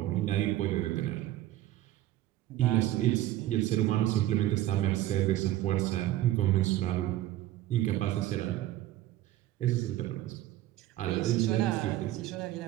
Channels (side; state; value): left; quieter; 14.4 dB